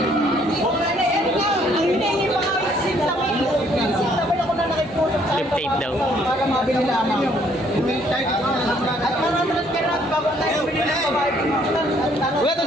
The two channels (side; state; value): both; normal; correlation 0.65